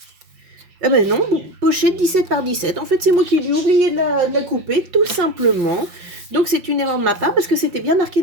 Eh ben non, pochette 17 par 17. En fait, c'est moi qui ai dû oublier de la couper, tout simplement. Donc, c'est une erreur de ma part parce que c'était bien marqué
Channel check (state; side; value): late; left; 5.7 ms